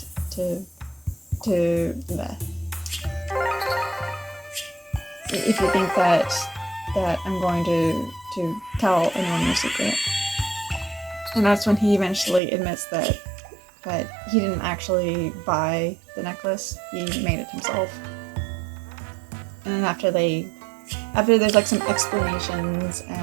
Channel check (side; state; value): left; drops out; at 12.4 s